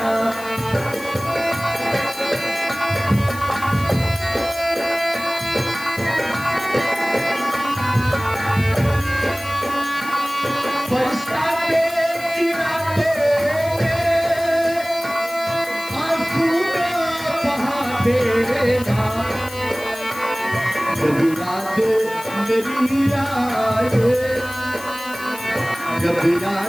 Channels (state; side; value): noise; left; hiss, 16 dB below the sound